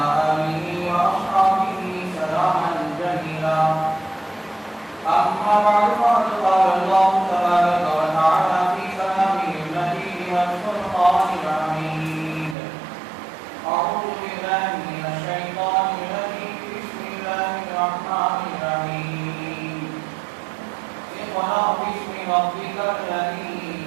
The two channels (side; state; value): left; drops out; at 12.6 s